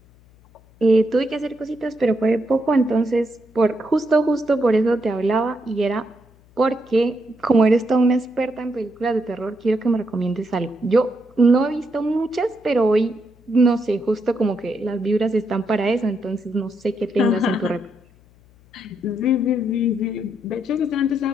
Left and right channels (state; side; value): noise; left; hum, 28 dB below the sound